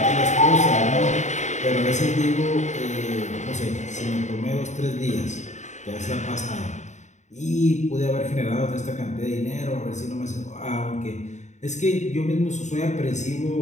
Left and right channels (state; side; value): late; right; 0.34 ms